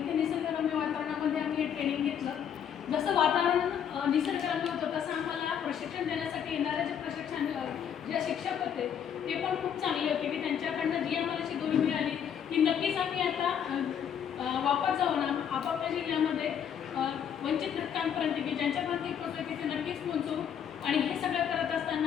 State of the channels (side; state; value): right; quieter; 8.5 dB